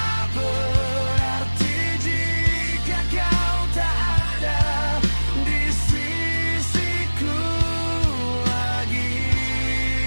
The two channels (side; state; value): both; inverted; correlation -1.00